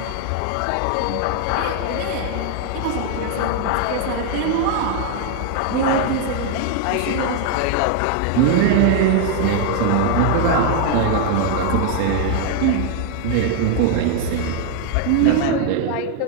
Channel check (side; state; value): both; different; correlation 0.00